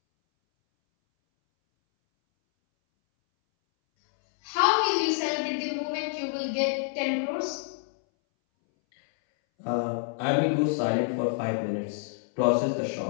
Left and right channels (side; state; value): right; silent; 60 dB below the other